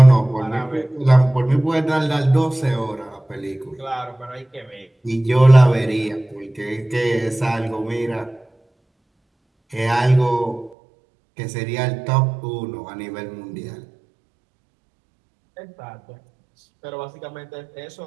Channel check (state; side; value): drops out; left; at 10.8 s